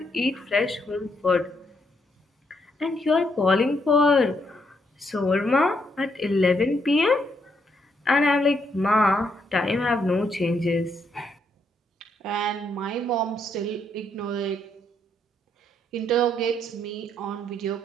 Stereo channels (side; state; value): both; normal; correlation 0.75